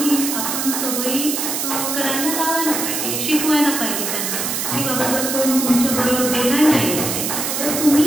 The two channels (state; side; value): noise; right; hiss, 1 dB below the sound